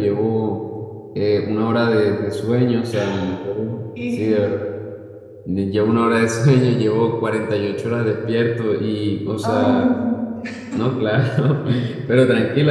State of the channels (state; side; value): identical; both; correlation 1.00